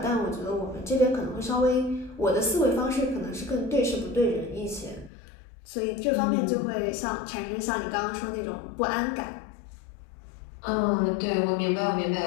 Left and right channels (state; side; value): drops out; right; at 5.1 s